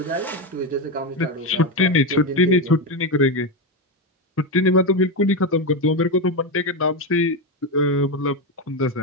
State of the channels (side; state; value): both; normal; correlation 0.11